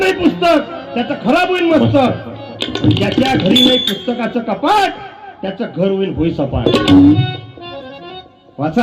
पुस्तक त्याचं खराब होईल मस्तक. ज्याच्या घरी नाही पुस्तकाचं कपाट त्याचं घर होईल सपाट.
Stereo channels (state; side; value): identical; both; correlation 1.00